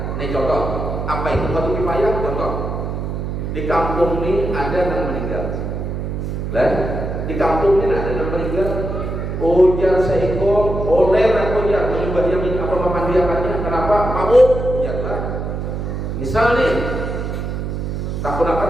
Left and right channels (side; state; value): right; noise; hum, 4 dB below the sound